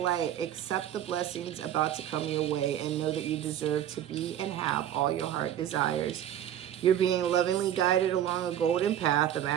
Accept the blessings about to come your way and know that you deserve to be and have all your heart desires. You're being lovingly guided along a golden path, a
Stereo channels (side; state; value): left; quieter; 11.0 dB